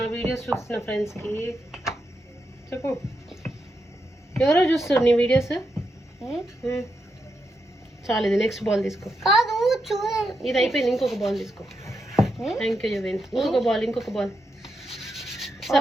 వీడియోస్ చూస్తున్న ఫ్రెండ్స్కి చెప్పు. ఎవరో చూస్తారు నీ వీడియోస్? చాలు, ఇది నెక్స్ట్ బాల్ తీసుకో. కాదు చూడండి, ఇది అయిపోయింది, ఇంకొక బాల్ తీసుకో. థ్యాంక్ యూ యువెన్. ఇంకొక బాల్.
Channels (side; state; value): both; normal; correlation 0.84